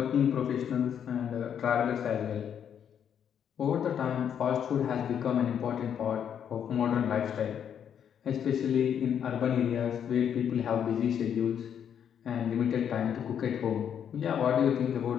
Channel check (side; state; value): right; quieter; 8.6 dB